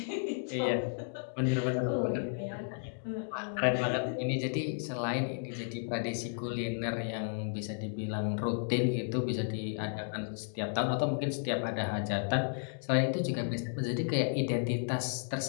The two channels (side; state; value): right; silent; digital silence